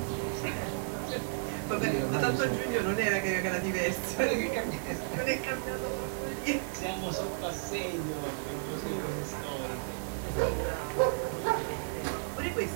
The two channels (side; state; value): left; silent; digital silence